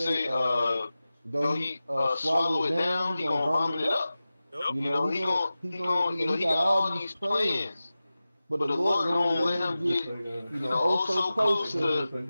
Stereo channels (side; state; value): both; inverted; correlation -0.96